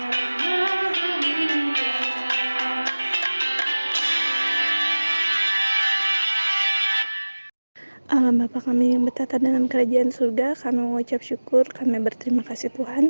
Maha Mulia. Allah Bapa kami yang bertata dalam kerajaan surga, kami mengucap syukur, kami berterima kasih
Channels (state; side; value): inverted; both; correlation -1.00